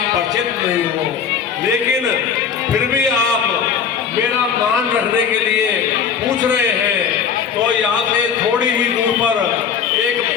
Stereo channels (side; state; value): right; quieter; 7.2 dB